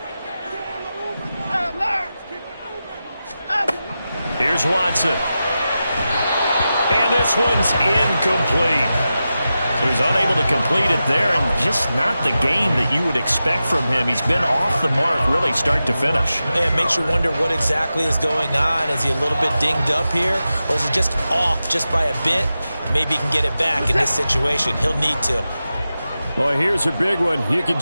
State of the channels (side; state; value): both; inverted; correlation -0.92